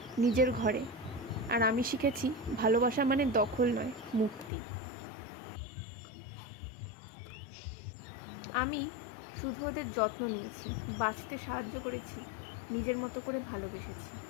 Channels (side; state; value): right; drops out; at 4.5 s